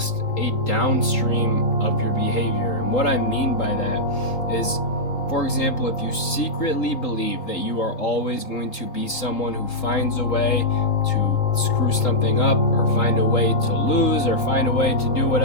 a downstream of your behavior. And what I mean by that is, for example, if you secretly believe that you are always going to be someone who finds a way to screw something up, or find a way to lose, or find a way to do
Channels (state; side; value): late; right; 3.8 ms